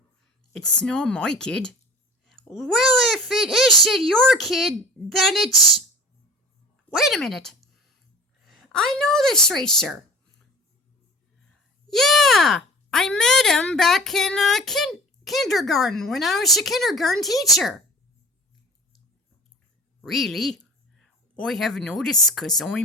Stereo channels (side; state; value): both; normal; correlation 0.40